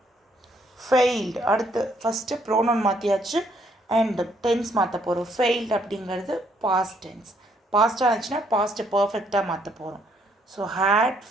ஃபெயில்டு. அடுத்து ஃபஸ்ட்டு ப்ரோனவுன் மாற்றியாச்சு அண்ட் டென்ஸ் மாற்ற போகிறோம். ஃபெயில்டு அப்படிங்கிறது பாஸ்ட் டென்ஸ். பாஸ்ட்டாக இருந்துச்சுன்னா பாஸ்ட்டு பர்ஃபெக்டாக மாற்ற போகிறோம். So had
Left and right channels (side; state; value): both; normal; correlation 0.69